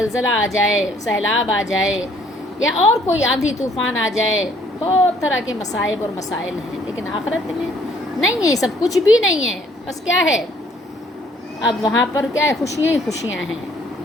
آ جائے، سیلاب آ جائے، یا اور کوئی آندھی طوفان آ جائے. بہت طرح کے مصائب اور مسائل ہیں. لیکن آخرت میں نہیں ہے، سب کچھ بھی نہیں ہے. بس کیا ہے، اب وہاں پر کیا ہے، خوشیاں ہی خوشیاں ہیں،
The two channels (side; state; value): both; normal; correlation 0.62